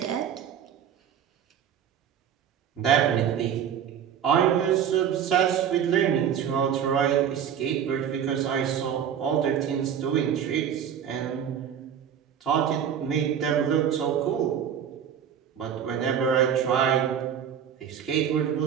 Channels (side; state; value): left; quieter; 8.7 dB